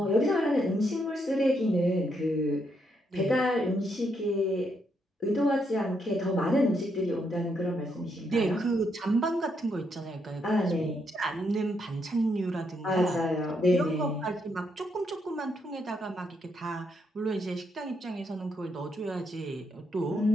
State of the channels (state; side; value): normal; both; correlation 0.77